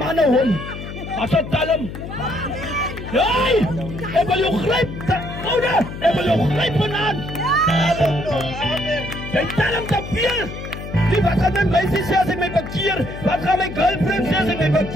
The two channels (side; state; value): left; noise; hum, 10 dB below the sound